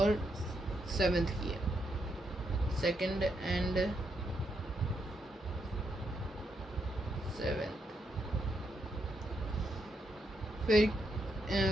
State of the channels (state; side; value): normal; both; correlation 0.80